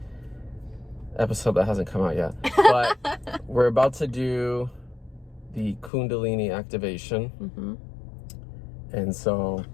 episode that hasn't come out yet. But we're about to do the Kundalini Activation. Mm-hmm. And so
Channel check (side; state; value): right; drops out; at 5.9 s